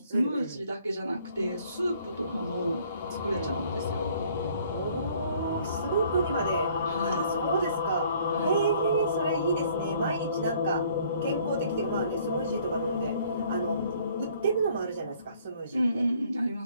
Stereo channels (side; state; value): both; inverted; correlation -0.59